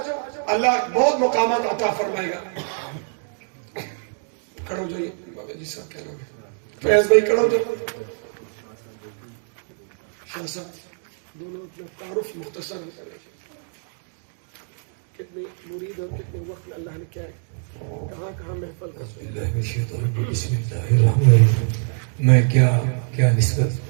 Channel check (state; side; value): silent; left; digital silence